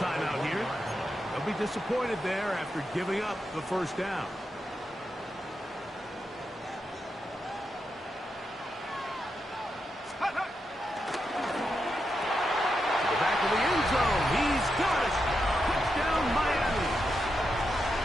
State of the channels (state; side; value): normal; both; correlation 0.85